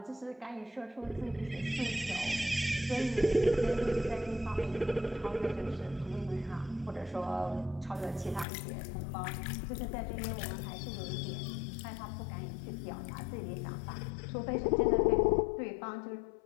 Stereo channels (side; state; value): right; drops out; at 8.5 s